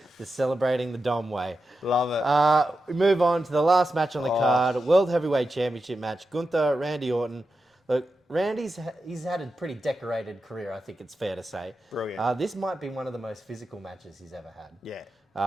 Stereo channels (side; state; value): both; normal; correlation 0.90